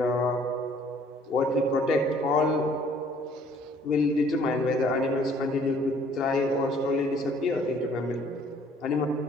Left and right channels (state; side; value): normal; both; correlation 0.58